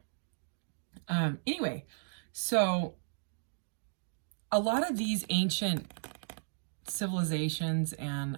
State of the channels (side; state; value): left; silent; digital silence